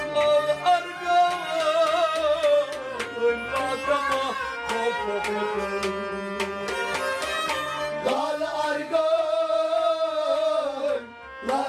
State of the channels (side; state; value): both; identical; correlation 1.00